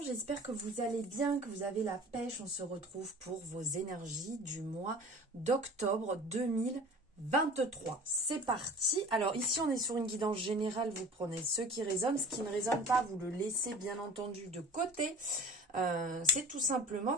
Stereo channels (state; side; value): normal; both; correlation 0.42